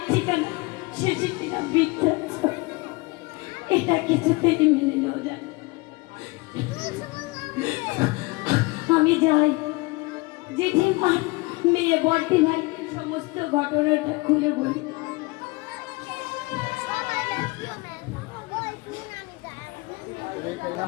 ঠিকানা শেষে কিনা বৃদ্ধাশ্রম। এটা কিছুতেই মেনে নেওয়া যায় না। আমি যাই জেঠিমা, মেয়ে বর্তি ভাই সমস্ত ঘটনাটা খুলে বলি।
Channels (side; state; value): right; quieter; 24.7 dB